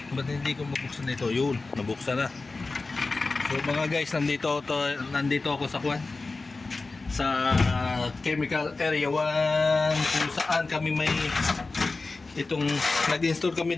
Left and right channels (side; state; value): right; quieter; 3.7 dB